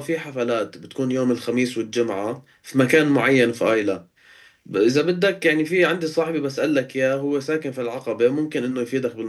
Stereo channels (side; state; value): both; identical; correlation 1.00